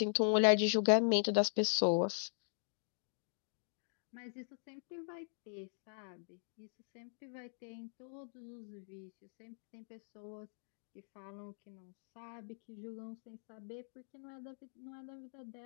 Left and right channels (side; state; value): right; silent; digital silence